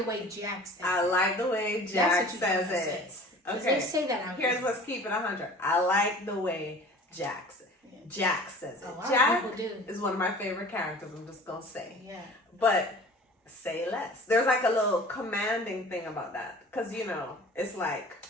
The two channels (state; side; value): normal; both; correlation 0.44